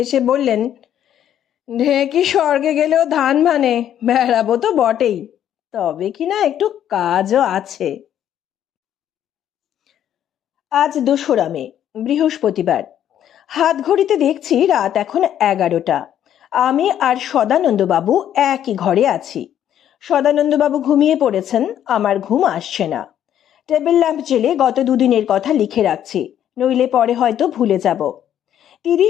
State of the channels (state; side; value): quieter; right; 10.5 dB